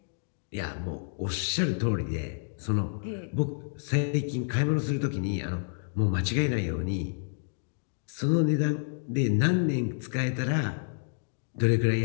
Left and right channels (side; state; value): right; silent; digital silence